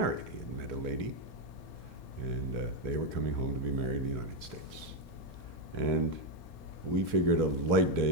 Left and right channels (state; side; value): late; right; 1.3 ms